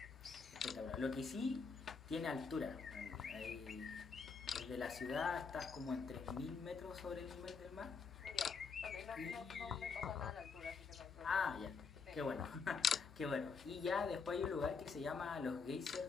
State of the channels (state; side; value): quieter; right; 5.2 dB